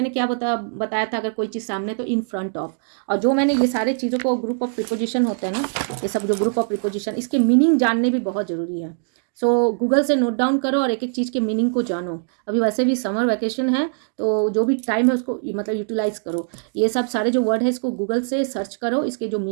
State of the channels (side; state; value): left; silent; digital silence